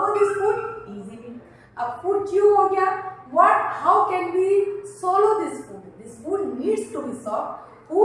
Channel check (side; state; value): both; identical; correlation 1.00